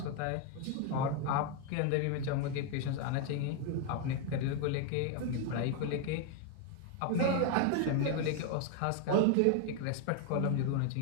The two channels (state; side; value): different; both; correlation 0.01